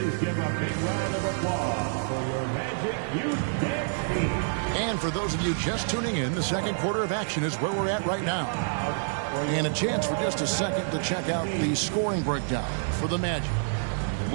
give a big round of applause for your Magic Youth Dance team. And for those of you just tuning in, the second quarter of action is where we're at right now. And a chance for just a second to check out the scoring breakdown for the Magic.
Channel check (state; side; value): silent; left; digital silence